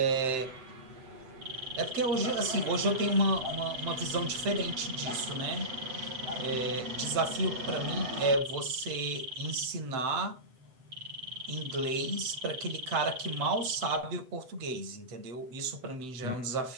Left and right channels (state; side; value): late; left; 7.8 ms